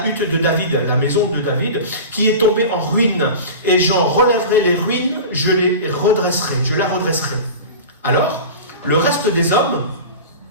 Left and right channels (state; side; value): inverted; both; correlation -0.32